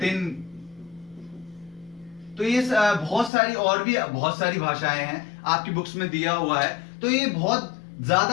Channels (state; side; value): drops out; right; at 3.3 s